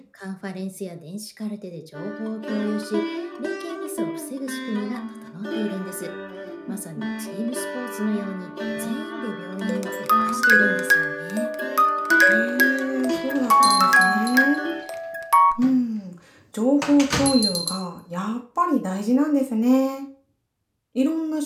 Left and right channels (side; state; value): both; identical; correlation 1.00